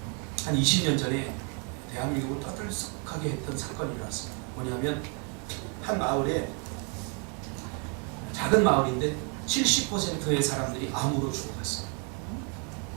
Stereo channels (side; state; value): left; quieter; 37.9 dB